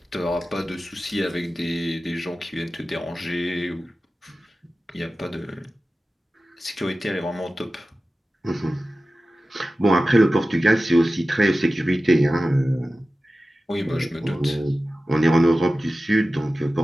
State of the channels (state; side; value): normal; both; correlation 0.95